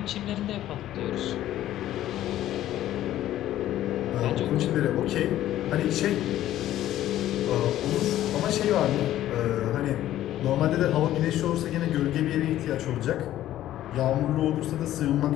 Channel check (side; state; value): right; quieter; 13.2 dB